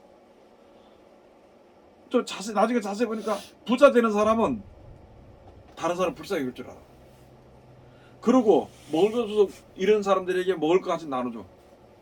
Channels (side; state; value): both; identical; correlation 1.00